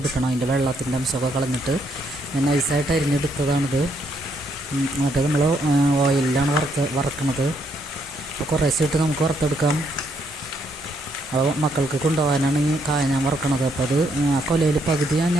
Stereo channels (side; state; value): both; normal; correlation 0.74